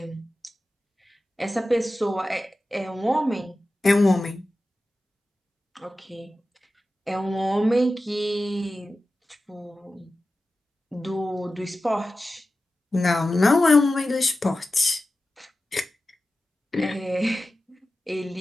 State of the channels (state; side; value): normal; both; correlation 0.94